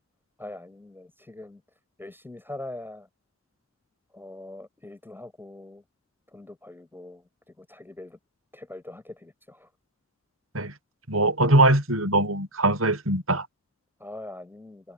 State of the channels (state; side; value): normal; both; correlation 0.06